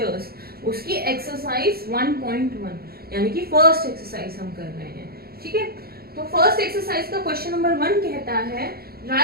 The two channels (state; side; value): late; left; 0.45 ms